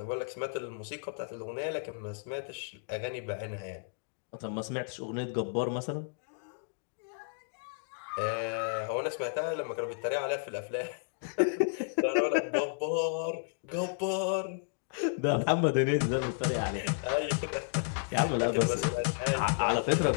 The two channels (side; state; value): right; silent; digital silence